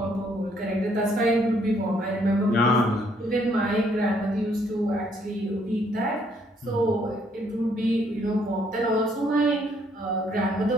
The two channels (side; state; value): both; normal; correlation 0.68